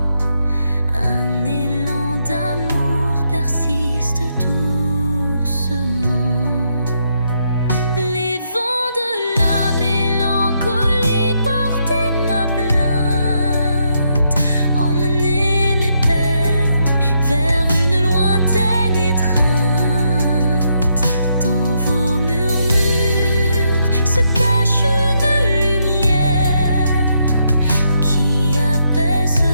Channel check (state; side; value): inverted; both; correlation -0.77